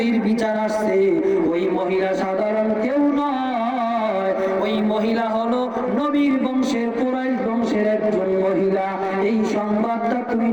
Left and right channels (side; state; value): both; identical; correlation 1.00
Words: বিচার আসছে ওই মহিলা সাধারণ কেউ নয়, ওই মহিলা হলো নবীর বংশের, কুরাইশ বংশের একজন মহিলা। এই সংবাদটা তুমি